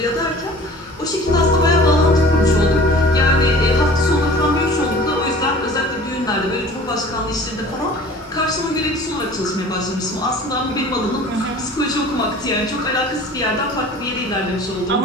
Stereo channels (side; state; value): both; normal; correlation 0.45